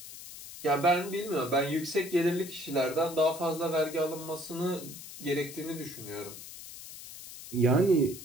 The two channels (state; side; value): noise; left; hiss, 13 dB below the sound